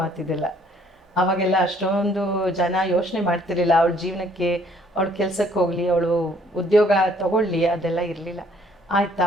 ಅವಾಗೆಲ್ಲ ಅಷ್ಟೊಂದು ಜನ ಯೋಚನೆ ಮಾಡ್ತಿರ್ಲಿಲ್ಲ ಅವಳ ಜೀವನಕ್ಕೆ, ಅವಳು ಕೆಲ್ಸಕ್ಕೆ ಹೋಗಲಿ, ಅವಳು ಉದ್ಯೋಗ ತಗೊಳ್ಳಿ, ಅದೆಲ್ಲ ಇರಲಿಲ್ಲ. ಆಯ್ತಾ,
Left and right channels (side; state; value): both; normal; correlation 0.61